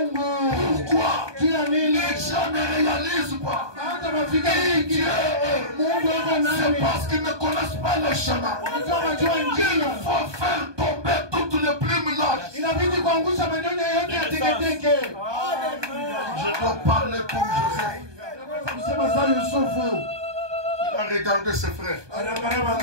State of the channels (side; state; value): left; late; 1.2 ms